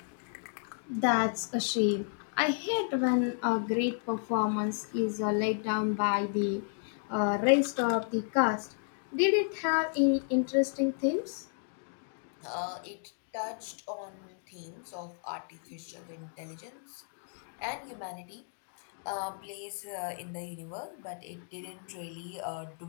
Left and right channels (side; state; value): right; silent; digital silence